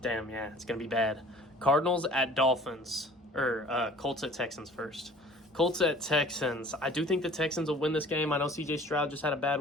yeah, it's going to be bad. Cardinals at Dolphins. Colts at Texans first. Colts at Texans. I do think the Texans will win this game. I know C.J. Stroud just had a bad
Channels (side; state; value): both; normal; correlation 0.49